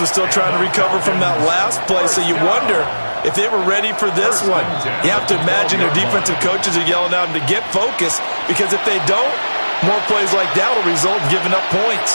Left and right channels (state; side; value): inverted; both; correlation -1.00